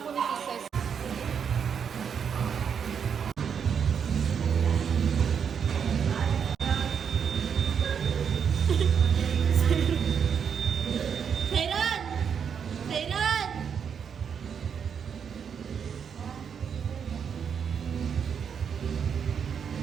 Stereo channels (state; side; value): quieter; left; 7.2 dB